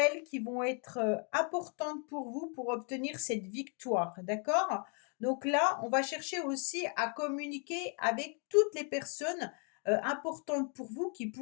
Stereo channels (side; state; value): right; quieter; 39.6 dB